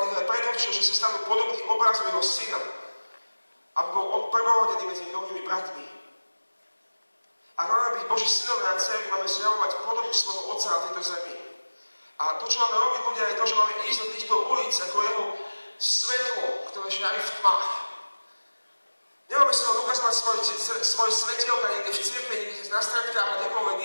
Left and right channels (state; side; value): inverted; both; correlation -1.00